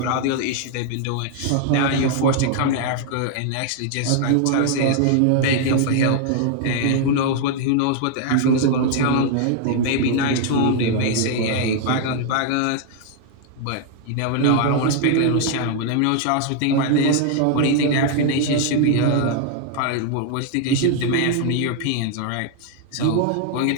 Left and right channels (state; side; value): different; both; correlation 0.00